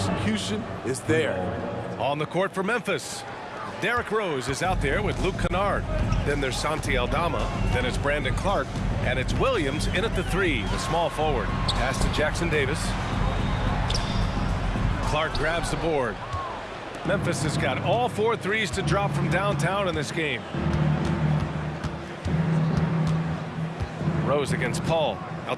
is there. On the court for Memphis, Derrick Rose is out there with Luke Kennard. Then there's Santi Aldama. Then it's Brandon Clark. And it's Williams in at the 3, the small forward. Pass to Jackson Davis. Clark grabs the board. Memphis has got all 4 threes to drop from downtown in this game. Rose against Paul.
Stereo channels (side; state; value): both; identical; correlation 1.00